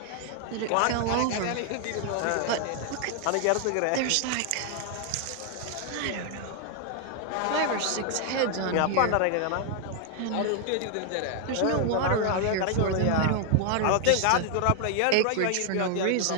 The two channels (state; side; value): different; both; correlation 0.00